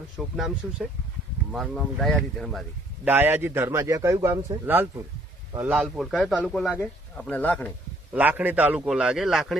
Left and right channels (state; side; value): normal; both; correlation 0.62